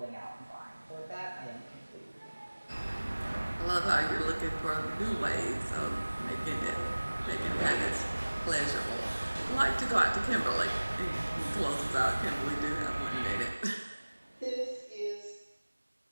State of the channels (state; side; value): inverted; both; correlation -1.00